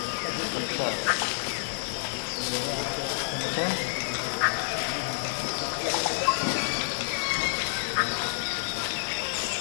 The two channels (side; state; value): right; silent; 59 dB below the other